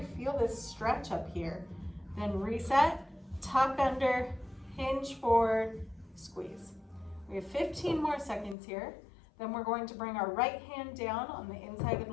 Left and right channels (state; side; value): drops out; right; at 8.6 s